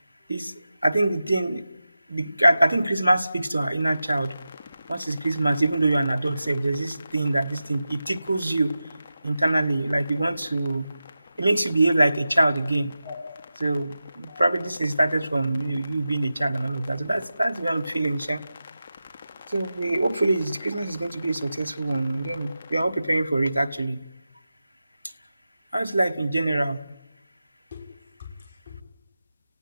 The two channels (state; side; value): inverted; both; correlation -0.93